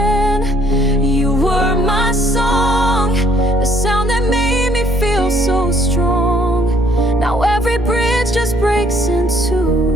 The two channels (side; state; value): both; normal; correlation 0.64